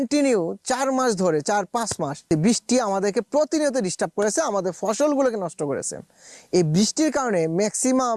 4 মাস ধরে 4-5 মাস বৃষ্টি আমাদেরকে প্রতিনিয়ত ডিস্টার্ব করেছে, আমাদের ফসলগুলোকে নষ্ট করেছে। এই বৃষ্টির কারণে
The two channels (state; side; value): identical; both; correlation 1.00